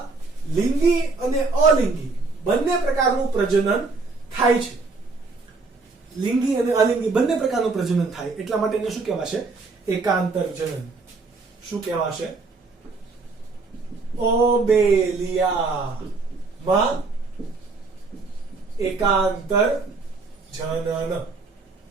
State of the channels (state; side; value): quieter; left; 3.9 dB